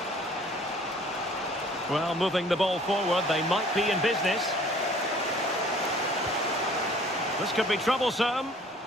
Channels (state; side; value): normal; both; correlation 0.53